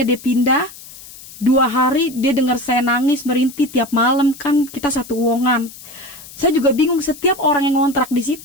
dia pindah. 2 hari dia dengar saya nangis, merintih tiap malam, kan kita satu uongan. Saya juga bingung, setiap orang yang ngontrak di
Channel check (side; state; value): left; noise; hiss, 17 dB below the sound